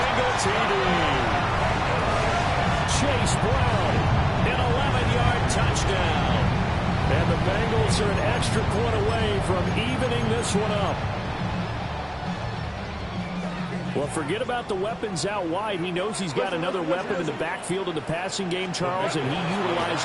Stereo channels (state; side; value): identical; both; correlation 1.00